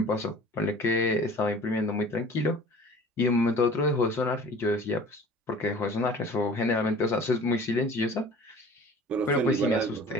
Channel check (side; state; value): both; normal; correlation 0.45